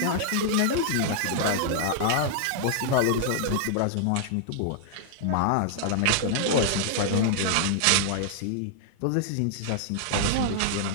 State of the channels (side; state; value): both; different; correlation -0.01